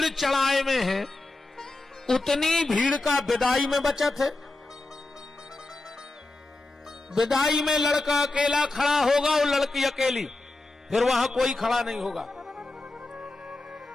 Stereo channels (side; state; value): right; quieter; 3.0 dB